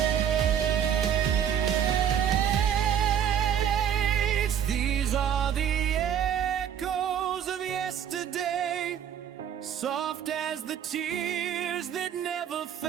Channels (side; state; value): left; quieter; 9.0 dB